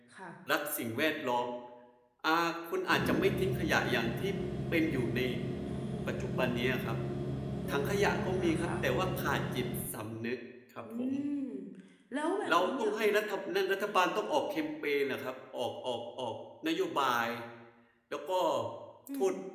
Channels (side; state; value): both; identical; correlation 1.00